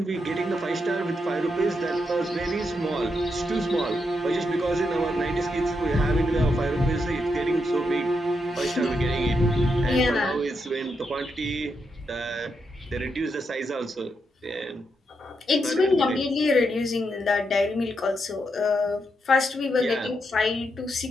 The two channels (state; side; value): normal; both; correlation 0.82